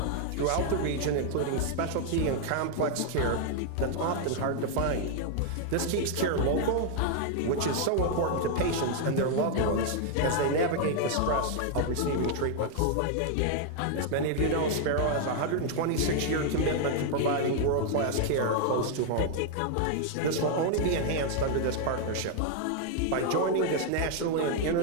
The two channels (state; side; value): different; both; correlation 0.00